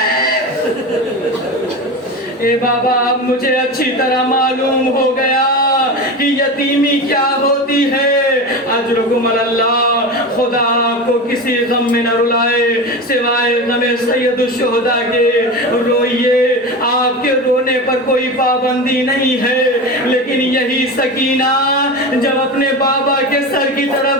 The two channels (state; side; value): normal; both; correlation 0.25